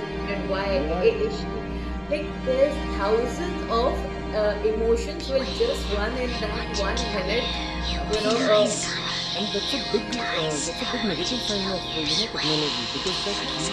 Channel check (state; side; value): identical; both; correlation 1.00